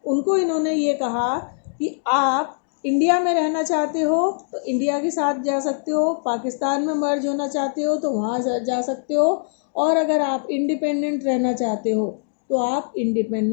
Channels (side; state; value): right; silent; digital silence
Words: उनको इन्होंने ये कहा कि आप इंडिया में रहना चाहते हो तो इंडिया के साथ जा सकते हो, पाकिस्तान में मर्ज होना चाहते हो तो वहाँ जा सकते हो, और अगर आप इंडिपेंडेंट रहना चाहते हो तो आप